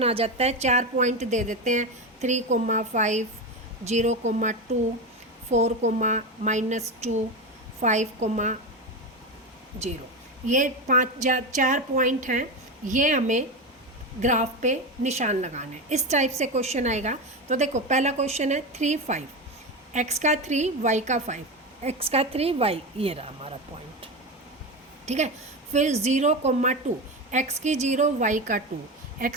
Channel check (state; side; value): normal; both; correlation 0.18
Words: आ जाता है, 4 पॉइंट दे देते हैं 3,5, 0,2, 4,-2, 5,0। ये 4 पॉइंट हैं, ये हमें ग्राफ पे निशान लगाने हैं। इस टाइप से क्वेश्चन आएगा। तो देखो पहला क्वेश्चन है 3, 5, x का 3, y का 5, x का 3, y, ये रहा हमारा पॉइंट। ठीक है। फिर 0,2, x की 0, y का 2,